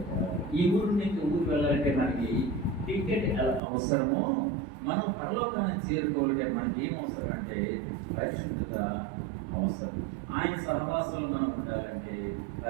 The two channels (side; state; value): left; drops out; at 3.6 s